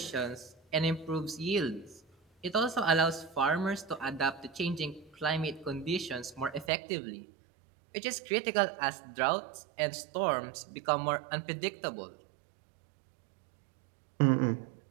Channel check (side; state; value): left; drops out; at 6.7 s